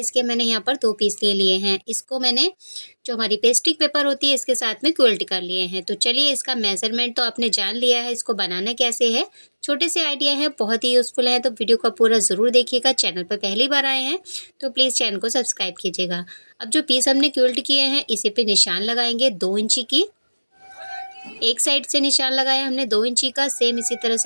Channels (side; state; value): both; inverted; correlation -1.00